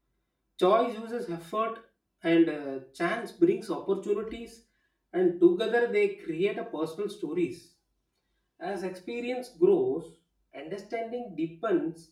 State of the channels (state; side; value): identical; both; correlation 1.00